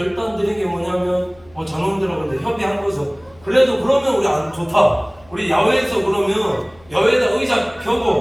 드린 게 뭐냐면 전원들하고 근데 협의한 거죠. 그래도 그러면 우리 안 좋다. 우리 야외에서 그러면 야외에다 의자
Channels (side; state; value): left; noise; hum, 27 dB below the sound